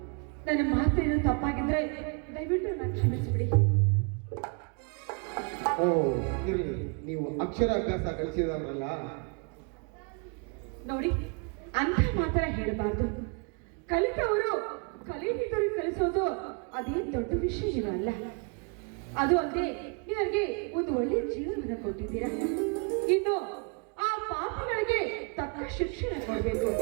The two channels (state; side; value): quieter; left; 36.9 dB